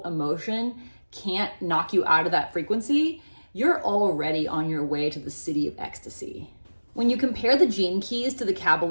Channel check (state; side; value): inverted; both; correlation -1.00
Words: emotion can't knock you out of that frequency, you're already on your way to the city of ecstasy. When you compare the gene keys to the